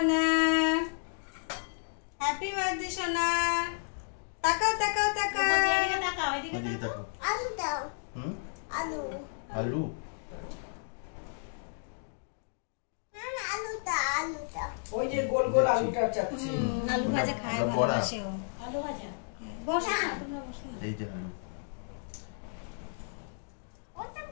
happy birthday সোনা। তাকাও তাকাও তাকাও, ওদিকে তাকাও। আলু দাও। হুম? আলু। আলু? আলুটা আলুটা। ওই যে গোল গোল আলুটা চাচ্ছি। আলু ভাজা খায় ওটা বড়া। ভালোবাসে ও। আলু ভাজা বসো না, তোমরা বসো না। এই যে আলু।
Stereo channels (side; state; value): right; silent; digital silence